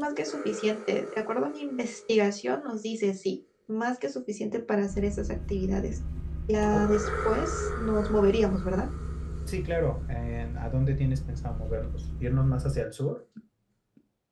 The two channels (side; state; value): both; identical; correlation 1.00